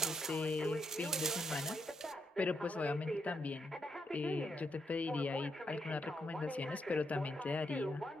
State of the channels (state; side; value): normal; both; correlation 0.79